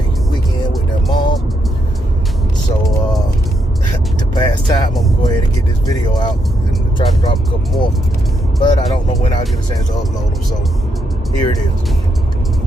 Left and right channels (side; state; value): both; normal; correlation 0.79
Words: weekend with their mom. So, to pass time, I'm going to go ahead and get this video out and try to drop a couple more. But I don't know when I'll get a chance to upload them, so here it